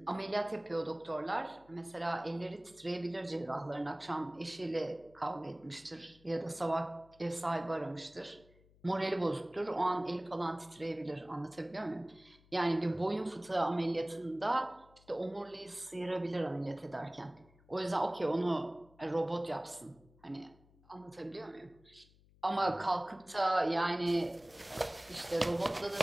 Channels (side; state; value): left; noise; hum, 28 dB below the sound